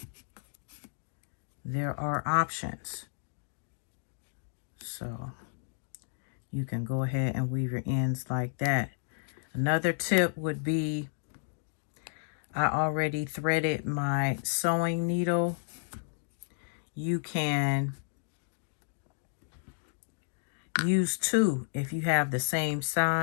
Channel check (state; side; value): silent; right; digital silence